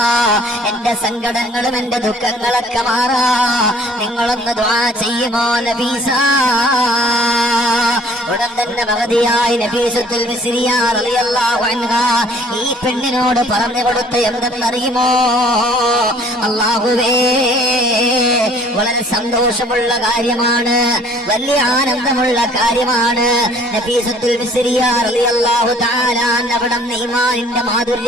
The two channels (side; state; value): both; normal; correlation 0.55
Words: എന്റെ സങ്കടങ്ങളും എന്റെ ദുഃഖങ്ങളൊക്കെ മാറാ നിങ്ങളൊന്ന് ദുആ ചെയ്യുമോ നഫീസ? ഉടൻ തന്നെ മഹദിയായ നഫീസത്തുൽ മിസ്രിയ റളിയല്ലാഹു അൻഹ ഈ പെണ്ണിനോട് പറഞ്ഞു കൊടുത്ത എന്തെന്നറിയുമോ? അല്ലാഹുവേ, വളരെ സന്തോഷമുള്ള കാര്യമാണ്, വലിയ ആനന്ദമുള്ള കാര്യമാണ്. നഫീസത്തുൽ മിസ്രിയ റളിയല്ലാഹു തആല അവിടുന്ന് ഈമാനിന്റെ